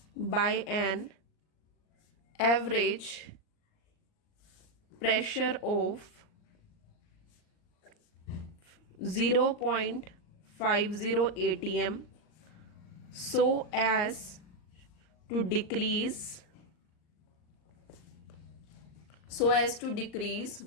by an average pressure of 0.50 atm so as to decrease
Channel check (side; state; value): right; late; 38 ms